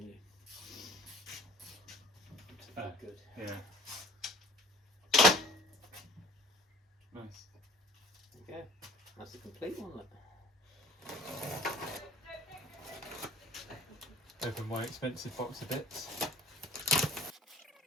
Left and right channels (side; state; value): both; normal; correlation 0.49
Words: you. Good. Yeah. Nice. There you go. That's the complete one. Look. Open my expensive box of bits.